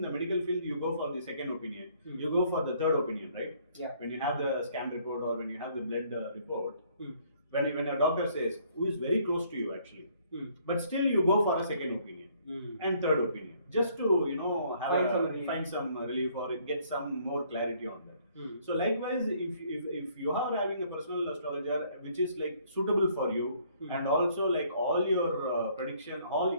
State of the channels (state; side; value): inverted; both; correlation -0.63